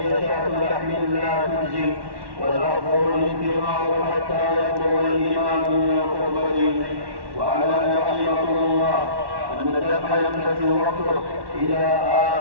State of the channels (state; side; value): late; left; 1.1 ms